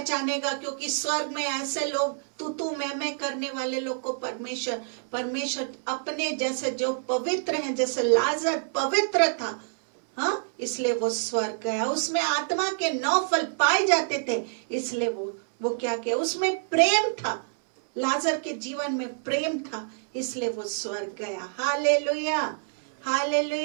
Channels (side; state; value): left; silent; 60 dB below the other